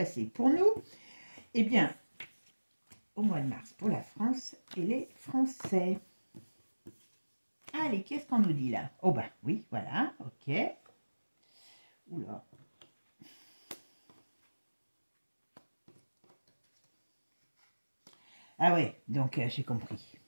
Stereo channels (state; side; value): inverted; both; correlation -1.00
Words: pour nous? Eh bien, au mois de mars, pour la France et les Français. Allez, qu'est-ce qu'on nous dit là? Oh ben, oui, voilà, ok. Oula. Ah ouais, donc j'ai compris.